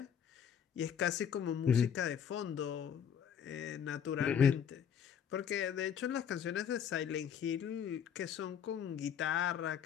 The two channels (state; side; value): quieter; right; 8.2 dB